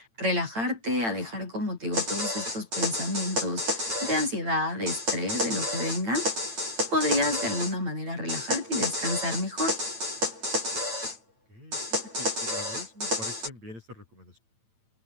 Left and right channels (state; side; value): late; left; 8.9 ms